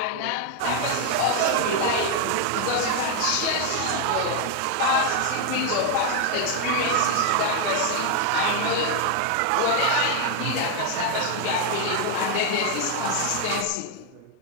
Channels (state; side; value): different; both; correlation 0.00